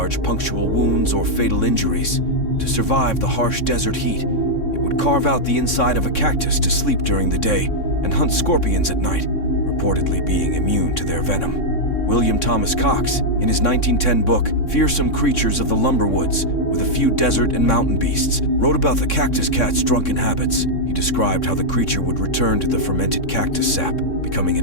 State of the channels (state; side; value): late; right; 3.6 ms